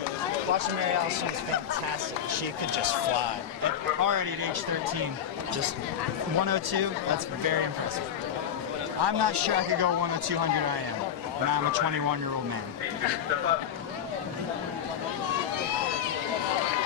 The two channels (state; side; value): quieter; right; 9.0 dB